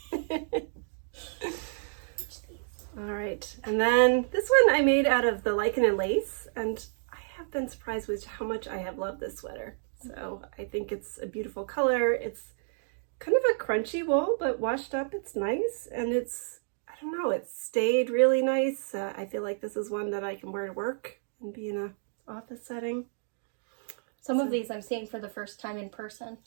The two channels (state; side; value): silent; left; digital silence